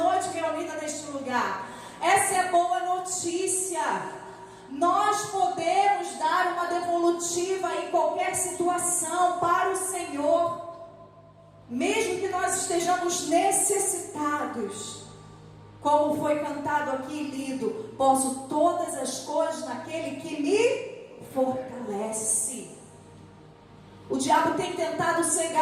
reunida neste lugar. Essa é a boa notícia. Nós podemos dar uma devolutiva em qualquer situação para o Senhor, mesmo que nós estejamos necessitados. Como foi cantado aqui e lido: posso todas as coisas naquele que me fortalece. O diabo tem tentado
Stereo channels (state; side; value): identical; both; correlation 1.00